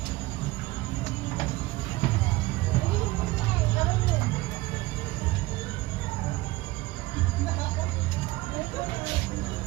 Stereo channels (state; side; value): quieter; left; 19.7 dB